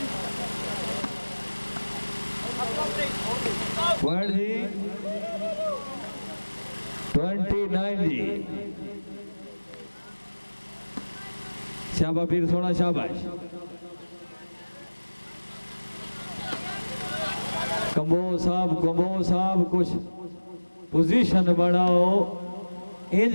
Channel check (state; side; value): inverted; both; correlation -1.00